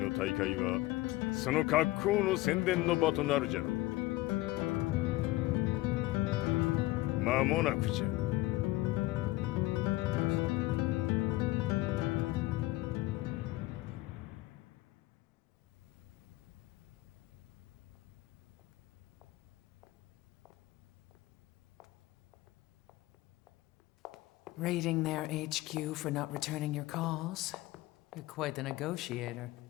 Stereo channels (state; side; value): quieter; right; 18.7 dB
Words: 大会はその格好の宣伝の場となるじゃろう。間もなくじゃ。Raiding their HQ for not returning your calls? You're quite the negotiator.